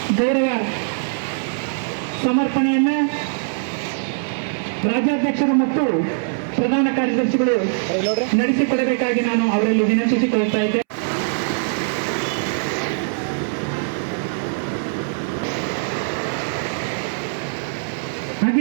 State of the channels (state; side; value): silent; left; 64 dB below the other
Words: ಗೌರವ ಸಮರ್ಪಣೆಯನ್ನ ರಾಜ್ಯಾಧ್ಯಕ್ಷರು ಮತ್ತು ಪ್ರಧಾನ ಕಾರ್ಯದರ್ಶಿಗಳು ನಡೆಸಿಕೊಡಬೇಕಾಗಿ ನಾನು ಅವರಲ್ಲಿ ವಿನಂತಿಸಿಕೊಳ್ಳುತ್ತಾ ಇದ್ದೆ.